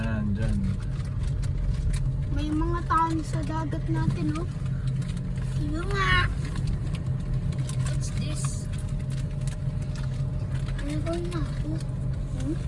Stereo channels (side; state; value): both; identical; correlation 1.00